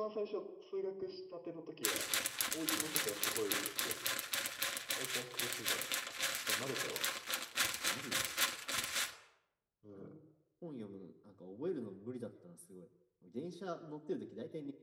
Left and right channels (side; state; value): both; identical; correlation 1.00